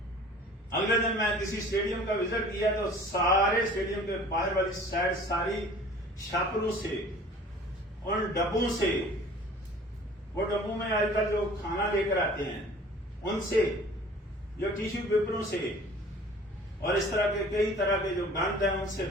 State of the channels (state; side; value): normal; both; correlation 0.47